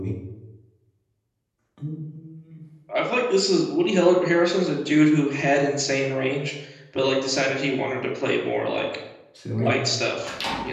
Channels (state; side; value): identical; both; correlation 1.00